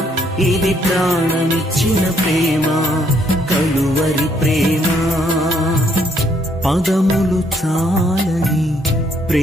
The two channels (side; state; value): both; normal; correlation 0.70